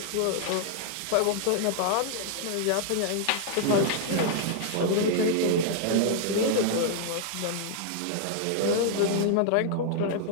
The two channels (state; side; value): different; both; correlation 0.00